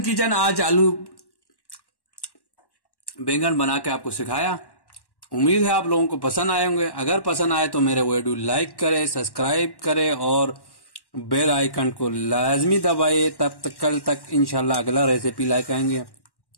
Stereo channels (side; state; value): right; late; 1.1 ms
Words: किचन आज आलू बैंगन बना के आपको सिखाया। उम्मीद है आप लोगों को पसंद आए होंगे। अगर पसंद आए तो मेरे वीडियो लाइक करें, सब्सक्राइब करें और बेल आइकन को लाजमी दबाए। तब तक कल तक इंशाल्लाह अगला रेसिपी लाइक आएंगे।